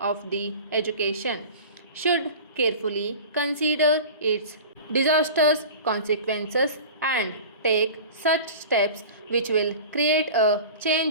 the education should carefully consider its disastrous consequences and take such steps which will create a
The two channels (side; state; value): both; inverted; correlation -0.36